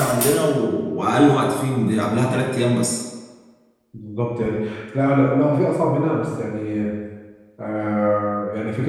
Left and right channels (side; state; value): both; identical; correlation 1.00